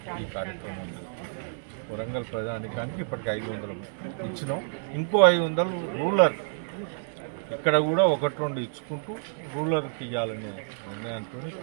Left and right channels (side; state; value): left; silent; digital silence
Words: ఈ కార్యక్రమం చేస్తున్నాం. వరంగల్ ప్రజానికానికి ఇప్పటికి 500 ఇచ్చినాం. ఇంకో 500 రూరల్ ఇక్కడ కూడా 1-2 ఇచ్చుకుంటూ రూరల్కి ఇవ్వాలనే నిర్ణయంతో